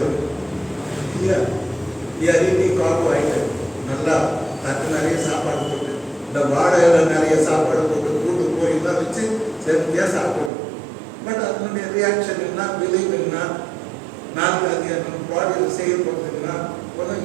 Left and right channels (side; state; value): left; drops out; at 10.5 s